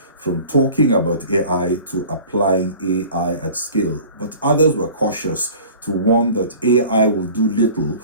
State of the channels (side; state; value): both; inverted; correlation -0.45